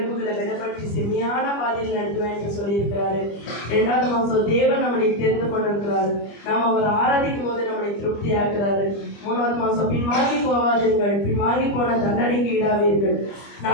விடப்பட்டு செம்மையான பாதையில் நடத்துவேன் என்று சொல்லியிருக்கிறாரு. 2வது மாதம் தேவன் நம்மளை தெரிந்து கொண்டிருக்கிறாரு. நாம் அவர் ஆராதிக்கும் போது நம்மளை திருப்தி ஆக்குறாரு. 3வது மாதம் பின்வாங்கி போவாதீர்கள், பின்வாங்கி போன தண்டனைக்கு ஈடாவீர்கள்.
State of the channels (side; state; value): right; late; 25 ms